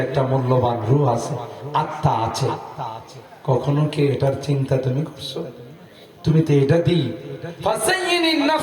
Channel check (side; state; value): both; identical; correlation 1.00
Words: একটা মূল্যবান রূহ আছে, আত্মা আছে, কখনো কি এটার চিন্তা তুমি করছো? তুমি তো এটা দিই,